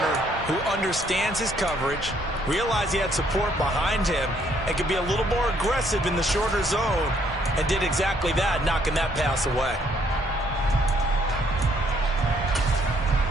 who understands his coverage, realized he had support behind him, and could be a little more aggressive in the shorter zone, and did exactly that, knocking that pass away.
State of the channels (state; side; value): normal; both; correlation 0.67